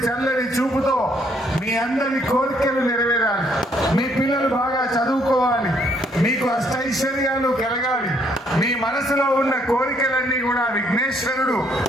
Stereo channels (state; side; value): normal; both; correlation 0.68